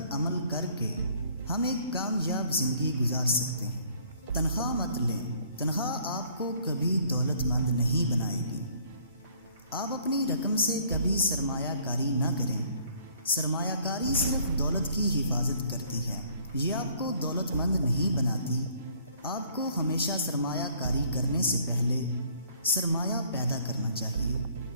عمل کر کے ہم ایک کامیاب زندگی گزار سکتے ہیں۔ تنخواہ مت لیں، تنخواہ آپ کو کبھی دولت مند نہیں بنائے گی۔ آپ اپنی رقم سے کبھی سرمایہ کاری نہ کریں۔ سرمایہ کاری صرف دولت کی حفاظت کرتی ہے، یہ آپ کو دولت مند نہیں بناتی۔ آپ کو ہمیشہ سرمایہ کاری کرنے سے پہلے سرمایہ پیدا کرنا چاہیے۔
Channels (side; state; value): both; inverted; correlation -0.59